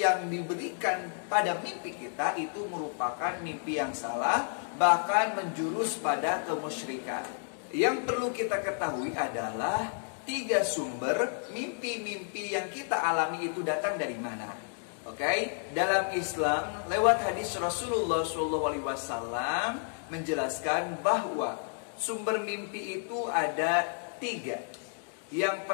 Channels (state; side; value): silent; right; 57 dB below the other